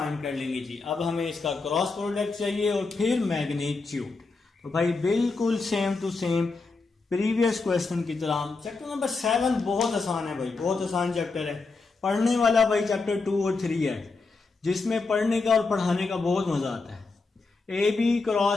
कर लेंगे जी। अब हमें इसका क्रॉस प्रोडक्ट चाहिए और फिर मैग्नीट्यूड। तो भाई बिल्कुल same to same previous question की तरह। चैप्टर नंबर 7 बहुत आसान है भाई, बहुत आसान चैप्टर है। पढ़ने वाला भाई चैप्टर 2 और 3 है, जिसमें पढ़ने का और पढ़ाने का बहुत मजा आता है। AB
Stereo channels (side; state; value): right; quieter; 4.0 dB